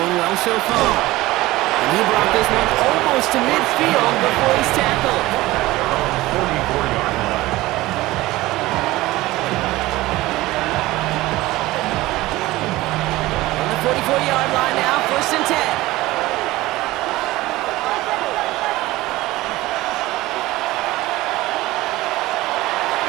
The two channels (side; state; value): left; quieter; 18.3 dB